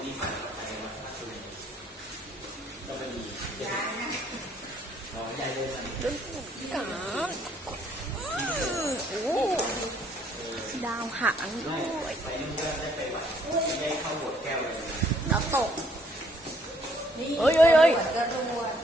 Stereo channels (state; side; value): normal; both; correlation 0.65